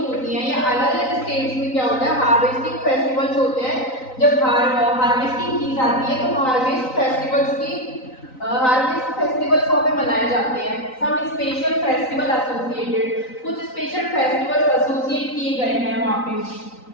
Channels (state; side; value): late; right; 3.9 ms